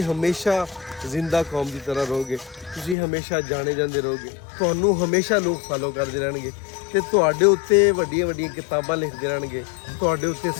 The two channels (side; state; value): right; drops out; at 3.0 s